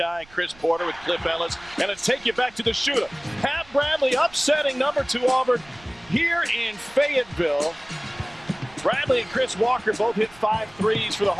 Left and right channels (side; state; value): right; noise; rumble, 25 dB below the sound